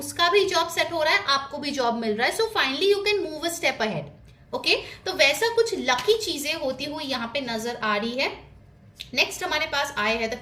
उसका भी जॉब सेट हो रहा है, आपको भी जॉब मिल रहा है, so finally you can move a step ahead. Okay, तो वैसा कुछ लकी चीजें होती हुई यहाँ पे नजर आ रही है। नेक्स्ट हमारे पास आए हैं the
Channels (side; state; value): both; identical; correlation 1.00